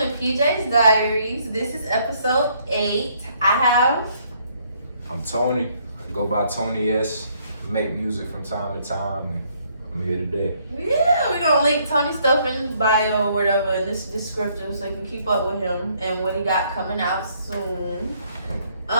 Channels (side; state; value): both; inverted; correlation -0.67